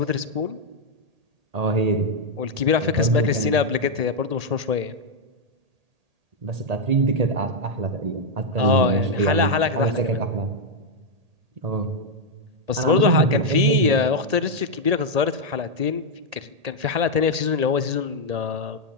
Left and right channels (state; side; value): late; left; 1.8 ms